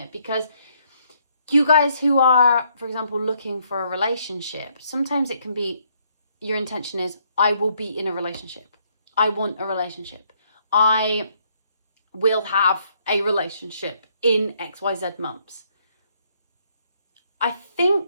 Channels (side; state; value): both; inverted; correlation -0.70